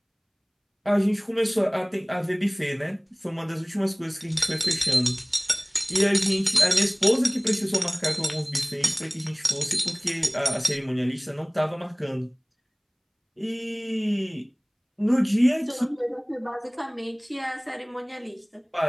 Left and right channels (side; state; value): both; identical; correlation 1.00